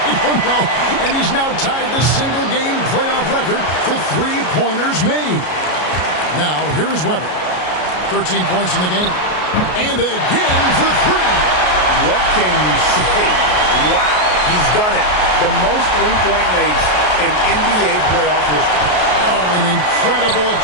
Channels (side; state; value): right; late; 33 ms